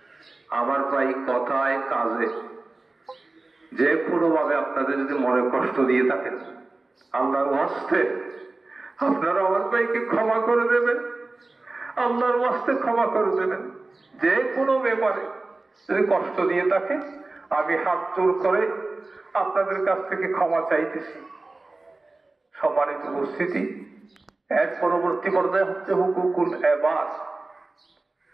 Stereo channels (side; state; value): left; quieter; 3.2 dB